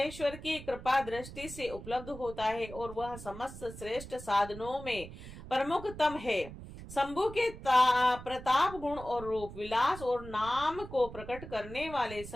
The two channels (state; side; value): noise; right; rumble, 13 dB below the sound